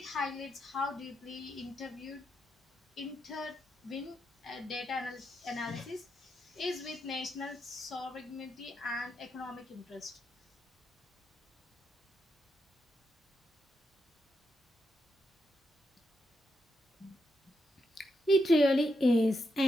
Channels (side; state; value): both; normal; correlation 0.83